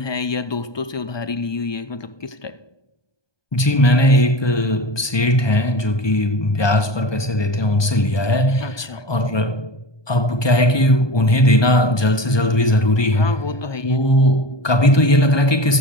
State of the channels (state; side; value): late; right; 1.2 ms